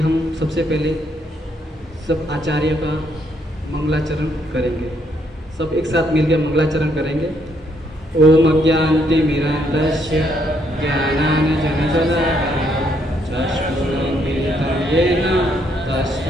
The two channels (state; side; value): normal; both; correlation 0.72